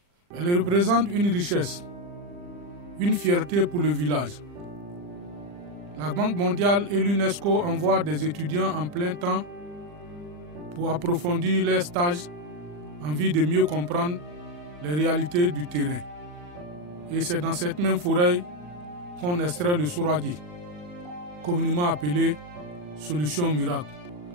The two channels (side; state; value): left; late; 40 ms